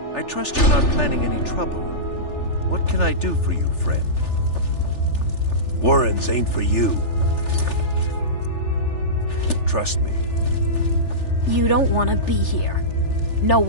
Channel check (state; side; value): late; right; 3.4 ms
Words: I trust you're not planning any trouble. What can I do for you, friend? Warrens ain't for you. Trust me. You don't want to be here. No